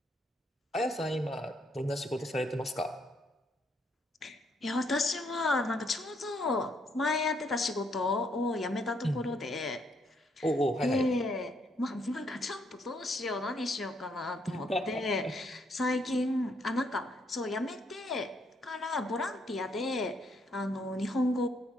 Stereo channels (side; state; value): both; normal; correlation 0.72